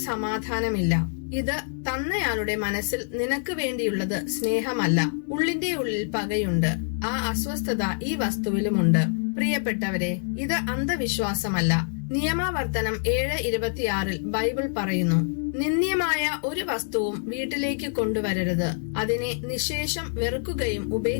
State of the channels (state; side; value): silent; right; digital silence